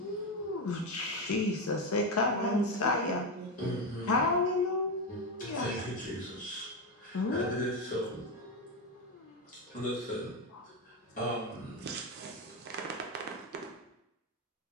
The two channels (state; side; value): normal; both; correlation 0.11